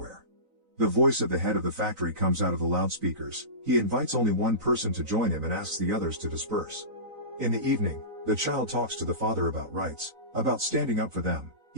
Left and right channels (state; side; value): late; left; 3.9 ms